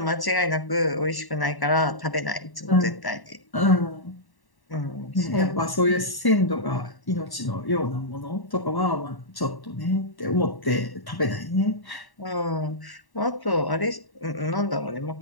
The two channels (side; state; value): right; late; 1.1 ms